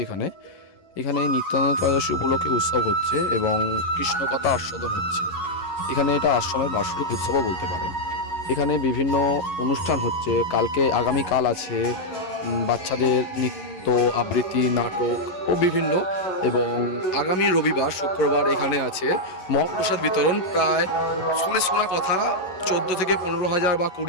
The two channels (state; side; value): late; right; 11 ms